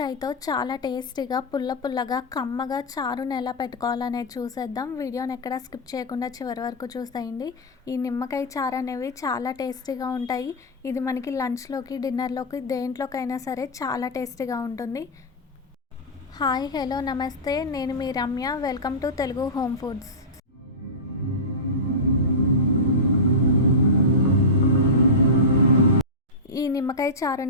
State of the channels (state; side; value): normal; both; correlation -0.13